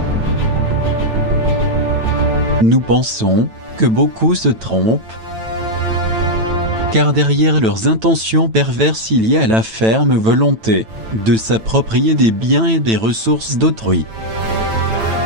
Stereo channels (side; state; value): left; late; 9.0 ms